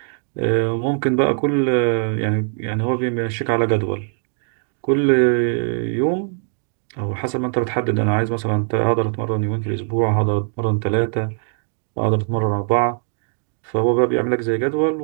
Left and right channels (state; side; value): silent; left; 61 dB below the other